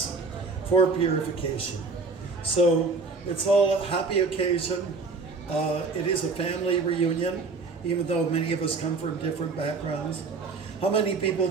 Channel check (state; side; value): quieter; left; 4.2 dB